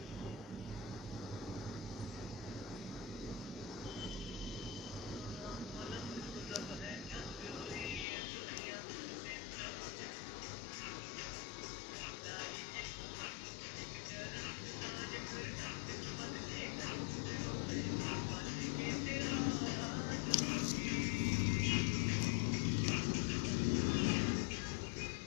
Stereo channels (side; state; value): right; drops out; at 8.1 s